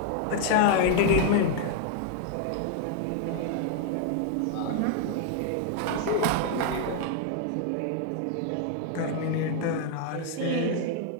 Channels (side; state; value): both; different; correlation 0.00